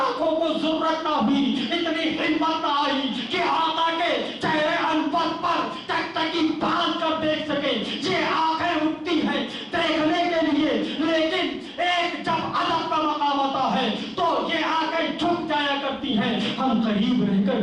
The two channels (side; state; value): both; identical; correlation 1.00